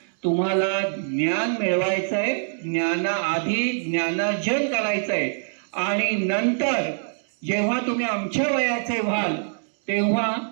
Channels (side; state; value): left; silent; digital silence